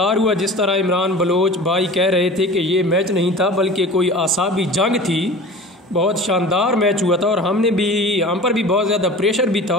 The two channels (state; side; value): normal; both; correlation 0.38